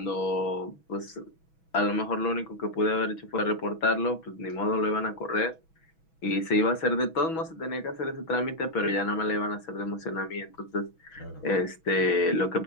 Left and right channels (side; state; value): right; late; 6.1 ms